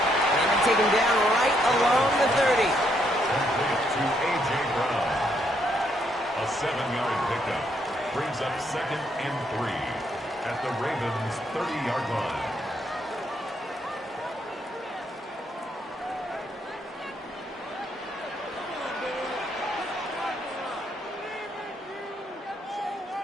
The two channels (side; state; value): both; normal; correlation 0.74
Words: And they take him down right along the 30. To A.J. Brown. A 7-yard pickup brings up 2nd and 3 at the Ravens' 30-yard line.